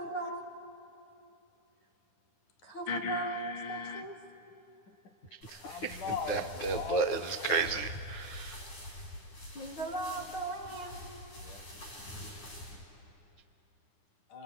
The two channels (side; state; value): right; late; 9.8 ms